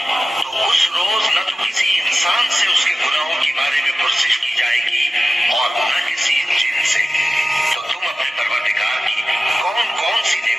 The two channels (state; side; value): normal; both; correlation 0.95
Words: तो उस रोज न तो किसी इंसान से उसके गुनाहों के बारे में पुरसिश की जाएगी और न किसी जिन से। तो तुम अपने परवरदिगार की कौन कौन सी